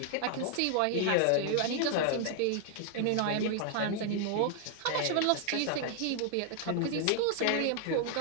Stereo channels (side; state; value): both; different; correlation 0.00